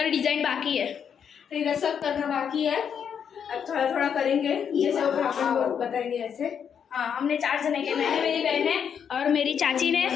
डिज़ाइन बाकी है, तो इधर सब करना बाकी है। अब थोड़ा थोड़ा करेंगे, जैसे वो ब्राह्मण लोग बताएंगे ऐसे। हाँ, हमने 4 जने के, मैंने, मेरी बहन है और मेरी चाची ने,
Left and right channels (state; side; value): quieter; right; 7.7 dB